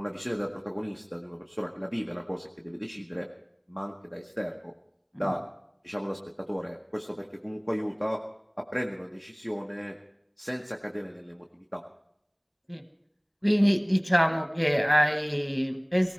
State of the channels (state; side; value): identical; both; correlation 1.00